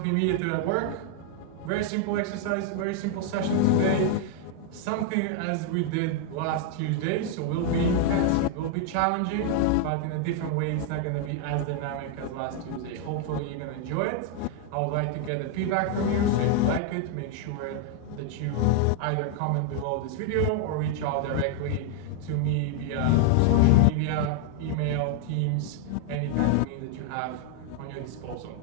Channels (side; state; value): both; different; correlation 0.00